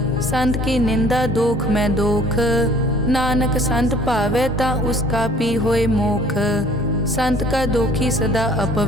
संत की निंदा दोख में दोख, नानक संत भावे ता उसका पी होए मोख। संत का दोखी सदा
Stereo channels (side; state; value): both; normal; correlation 0.54